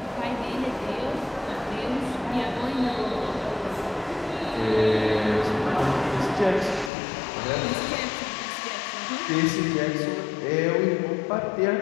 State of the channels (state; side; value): drops out; right; at 6.9 s